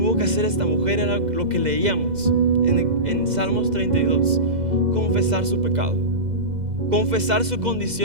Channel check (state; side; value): late; left; 2.0 ms